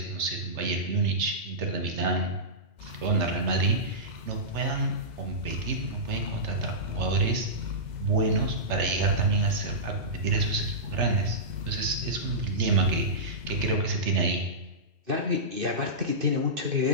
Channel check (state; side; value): late; left; 2.0 ms